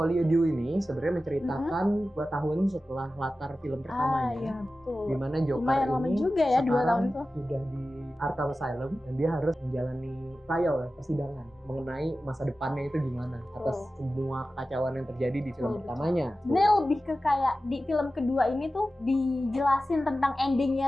Deux ini sebenarnya menceritakan 2 tahun setelah latar film pertamanya. Iya, betul. Di mana Joker Lumayan ini lama juga ya 2 tahun tuh. Sudah di Arkham Asylum dan dia harus menjalani trial ya, persidangan mengenai masa depannya itu gimana atas semua kekacauan yang terjadi di film pertamanya. Sebenarnya lebih ke kayak di film kedua ini tuh dijelasin tentang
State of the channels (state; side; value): normal; both; correlation 0.94